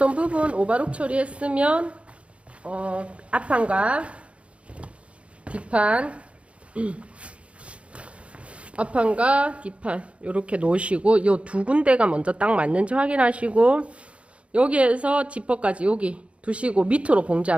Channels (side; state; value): left; late; 0.061 ms